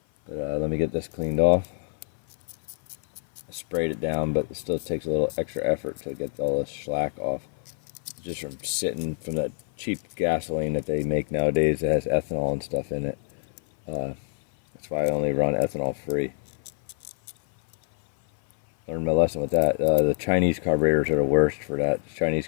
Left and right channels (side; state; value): right; silent; 56 dB below the other